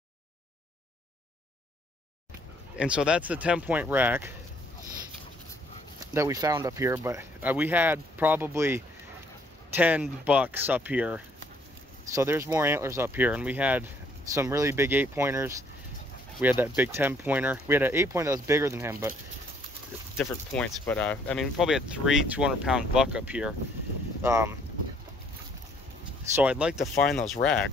And so that's the 10-point rack that we found up here, but we had probably 10 bucks up here. So there's more antlers up here, and we had some really big 8-pointers. We had that big 10-pointer. We had an 8-pointer that was bigger than him, but different points. But I mean, we probably had 3 200-pound buck up here. So I'd like to find those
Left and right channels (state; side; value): normal; both; correlation 0.64